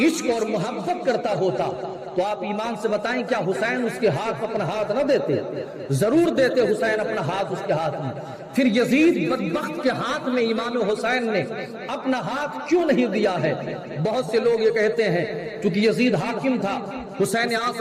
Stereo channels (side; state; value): both; identical; correlation 1.00